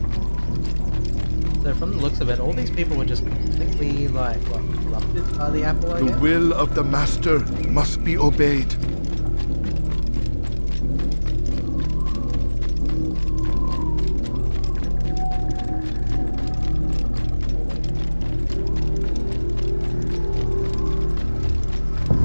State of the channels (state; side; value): inverted; both; correlation -1.00